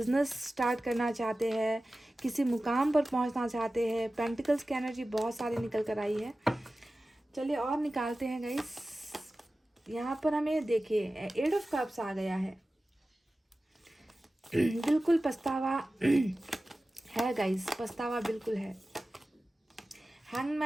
स्टार्ट करना चाहते हैं, किसी मुकाम पर पहुंचना चाहते हैं। पेंटिकल्स की एनर्जी बहुत सारी निकल कर आई है। चलिए और निकालते हैं गाइस। यहाँ पर हमें देखिए 8 ऑफ कप्स आ गया है। बिल्कुल पछतावा है गाइस, पछतावा बिल्कुल है।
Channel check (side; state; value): both; normal; correlation 0.96